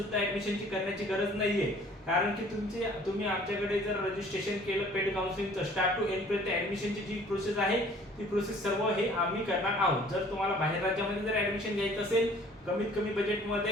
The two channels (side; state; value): both; normal; correlation 0.53